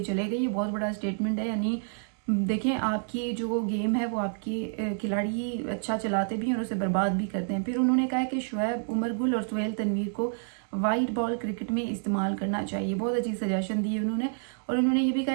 چلے گئے. یہ بہت بڑا اسٹیٹمنٹ ہے. یعنی دیکھیں آپ کی جو گیم ہے وہ آپ کی کھلاڑی اچھا چلاتے بھی ہیں اور اسے برباد بھی کرتے ہیں. پھر انہوں نے کہا کہ شعیب عمر گل اور سہیل تنویر کو وائٹ بال کرکٹ میں استعمال کرنا چاہیے. بہت اچھی سجیشن دی ہے انہوں نے. اور انہوں نے یہ بھی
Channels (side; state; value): left; silent; digital silence